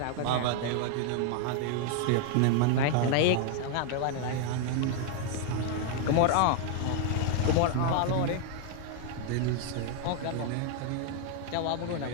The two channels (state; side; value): different; both; correlation 0.00